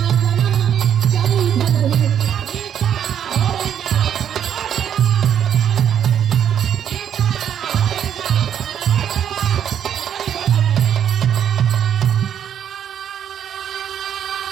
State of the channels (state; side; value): quieter; left; 9.2 dB